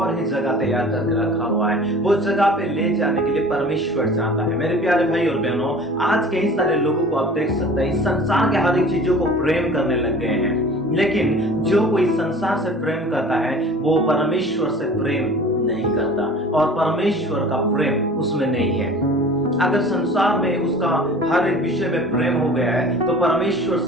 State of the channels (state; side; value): normal; both; correlation 0.43